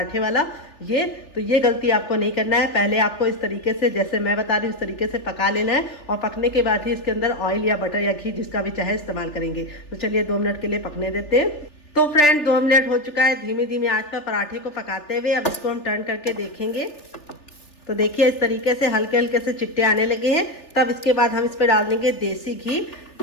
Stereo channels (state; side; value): late; right; 3.4 ms